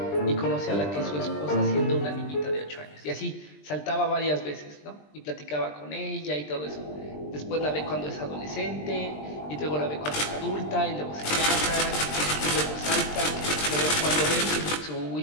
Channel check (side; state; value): right; late; 20 ms